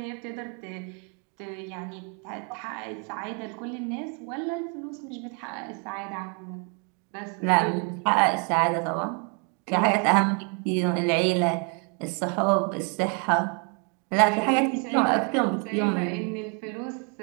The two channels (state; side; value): quieter; left; 37.2 dB